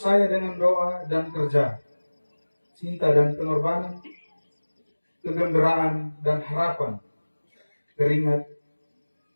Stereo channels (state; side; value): inverted; both; correlation -1.00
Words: dengan doa dan kerja, cinta dan pengorbanan, kegembiraan dan harapan, keringat